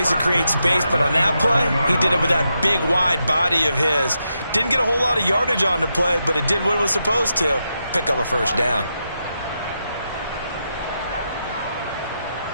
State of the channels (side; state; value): both; inverted; correlation -0.85